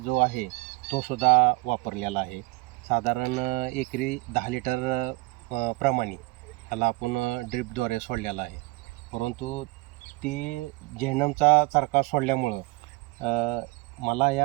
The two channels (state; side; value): quieter; left; 23.3 dB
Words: आहे तो सुद्धा वापरलेला आहे. साधारण एकरी 10 लिटर प्रमाणे ह्याला आपण ड्रिपद्वारे सोडलेला आहे. परंतु ती जेनमचा चरका सोडल्यामुळं मला